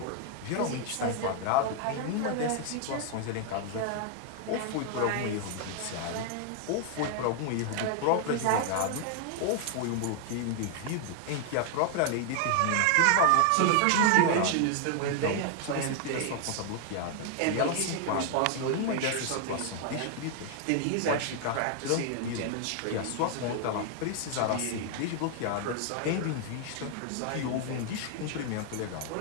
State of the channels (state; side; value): different; both; correlation 0.00